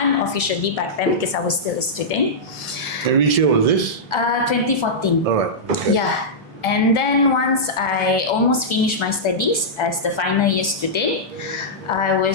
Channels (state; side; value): normal; both; correlation -0.11